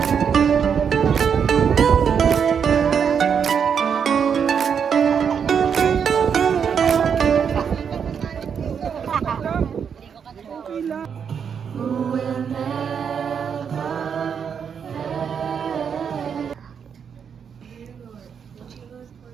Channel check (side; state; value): left; quieter; 7.2 dB